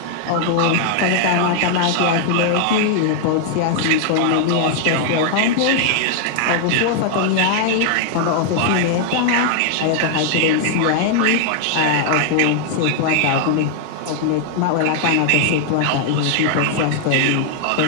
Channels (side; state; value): both; different; correlation 0.00